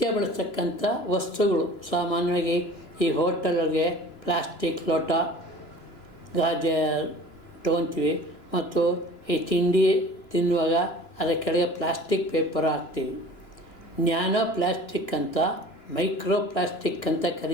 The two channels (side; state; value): right; late; 2.9 ms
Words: ಬಳಸ್ತಕ್ಕಂಥ ವಸ್ತುಗಳು. ಸಾಮಾನ್ಯವಾಗಿ ಈ ಹೋಟೆಲ್ಗೆ ಪ್ಲಾಸ್ಟಿಕ್ ಲೋಟ ಗಾಜೆ ತೊಗೊತೀವಿ, ಮತ್ತು ಈ ತಿಂಡಿ ತಿನ್ನುವಾಗ ಅದರ ಕೆಳಗೆ ಪ್ಲಾಸ್ಟಿಕ್ ಪೇಪರ್ ಹಾಕ್ತೀವಿ. ನ್ಯಾನೋ ಪ್ಲಾಸ್ಟಿಕ್ ಅಂತ, ಮೈಕ್ರೋ ಪ್ಲಾಸ್ಟಿಕ್ ಅಂತ